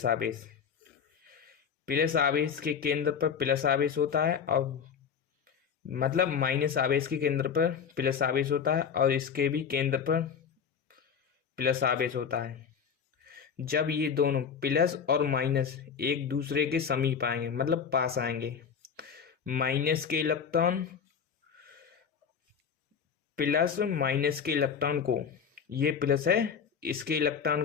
आवेश। प्लस आवेश के केंद्र पर प्लस आवेश होता है और मतलब माइनस आवेश के केंद्र पर प्लस आवेश होता है और इसके भी केंद्र पर प्लस आवेश होता है। जब ये दोनों प्लस और माइनस एक दूसरे के समीप आएंगे मतलब पास आएंगे, माइनस के इलेक्ट्रॉन प्लस माइनस के इलेक्ट्रॉन को, ये प्लस है, इसके इलेक्ट्रॉन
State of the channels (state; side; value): quieter; right; 6.9 dB